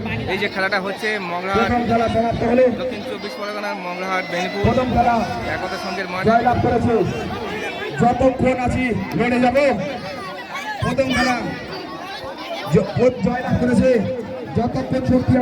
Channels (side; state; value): both; identical; correlation 1.00